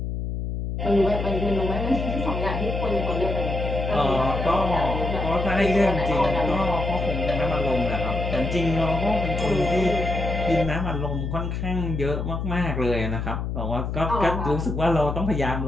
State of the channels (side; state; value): left; noise; hum, 3 dB below the sound